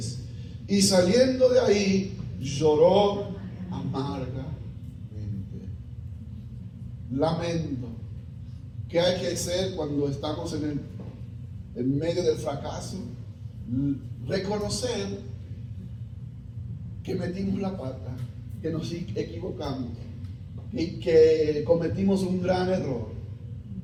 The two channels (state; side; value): identical; both; correlation 1.00